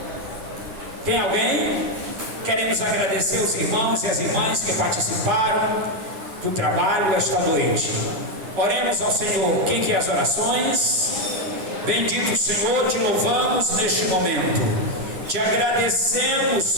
Tem alguém? Queremos agradecer os irmãos e as irmãs que participaram do trabalho esta noite. Oremos ao Senhor. Quem quer as orações? Bendito Senhor, te louvamos neste momento. Te agradecemos,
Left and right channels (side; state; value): left; late; 10 ms